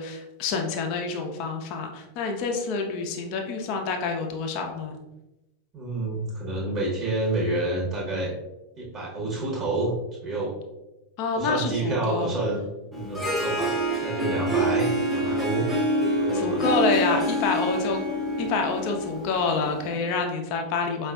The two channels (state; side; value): normal; both; correlation 0.02